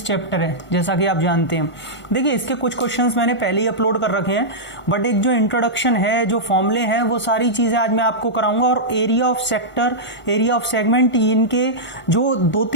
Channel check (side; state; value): right; late; 1.5 ms